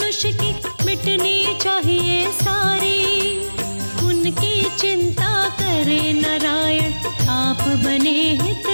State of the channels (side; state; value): both; inverted; correlation -1.00